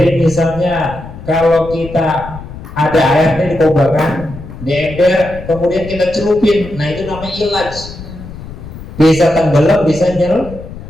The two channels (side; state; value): left; noise; rumble, 13 dB below the sound